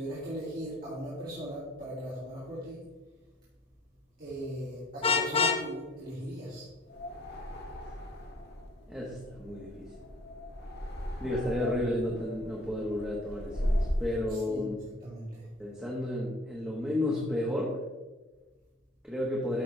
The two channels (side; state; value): both; normal; correlation 0.56